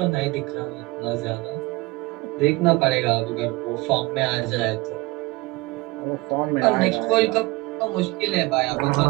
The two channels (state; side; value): quieter; left; 22.6 dB